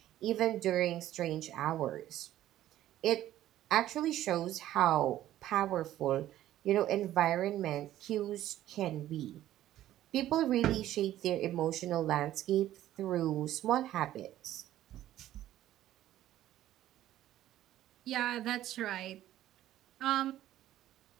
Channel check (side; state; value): left; quieter; 13.3 dB